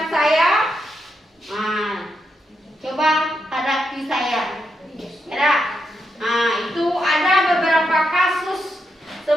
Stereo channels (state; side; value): normal; both; correlation 0.83